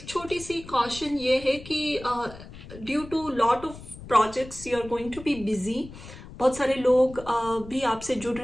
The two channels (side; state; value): left; noise; rumble, 15 dB below the sound